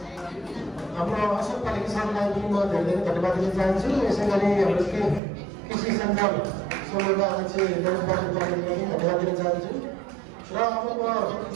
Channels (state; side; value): drops out; left; at 5.2 s